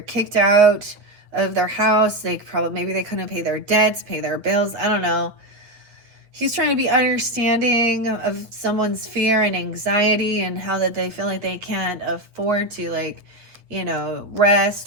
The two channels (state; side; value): late; left; 8.0 ms